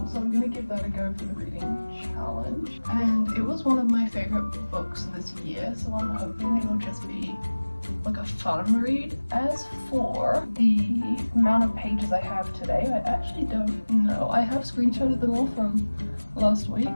so I'm going to give that a go for the reading challenge, and it was one of my favourite books this year, so I'm hoping it'll just be like a fun read. As for the amount of pages I have today, I actually don't know. I have screenshotted them all from last week,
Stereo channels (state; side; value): inverted; both; correlation -1.00